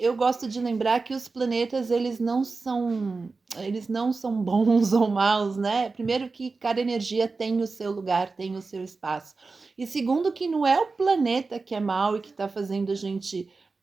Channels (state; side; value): quieter; left; 4.1 dB